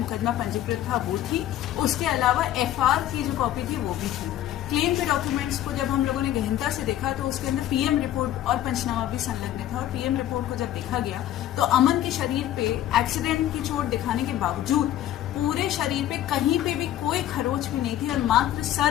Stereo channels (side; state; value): right; quieter; 12.5 dB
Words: पंजीकृत था, वो थी। उसके अलावा FR की जो कॉपी थी वो भी थी। क्लेम के डॉक्यूमेंट्स को जब हम लोगों ने गहनता से देखा तो उसके अंदर PM रिपोर्ट और पंचनामा भी संलग्न था और PM रिपोर्ट को जब देखा गया तो अमन के शरीर पे एक्सीडेंट की चोट दिखाने के बावजूद पूरे शरीर पे कहीं पे भी कोई खरोच भी नहीं थी और मात्र